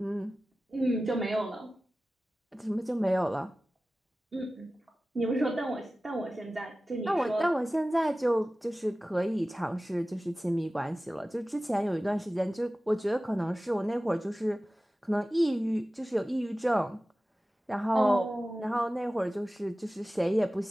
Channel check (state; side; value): normal; both; correlation 0.96